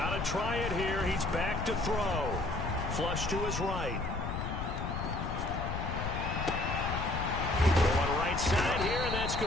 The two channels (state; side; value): noise; left; rumble, 3 dB below the sound